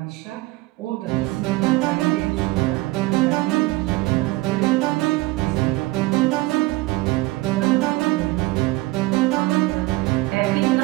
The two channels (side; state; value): left; quieter; 20.5 dB